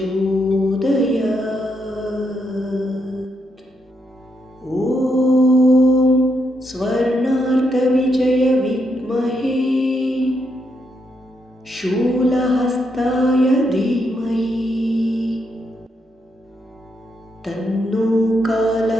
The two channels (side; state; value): both; normal; correlation 0.79